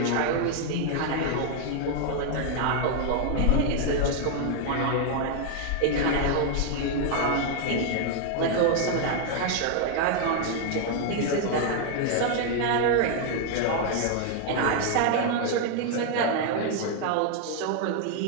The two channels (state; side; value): different; both; correlation 0.00